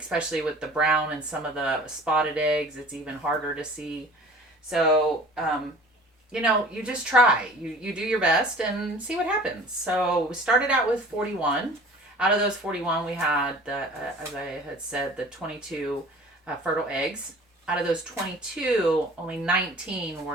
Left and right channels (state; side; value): normal; both; correlation 0.45